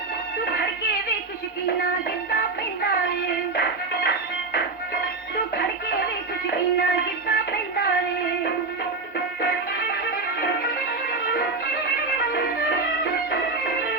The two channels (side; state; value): left; quieter; 3.7 dB